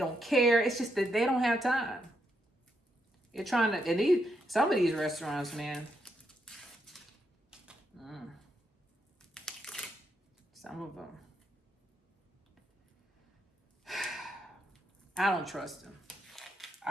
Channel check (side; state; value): both; normal; correlation 0.80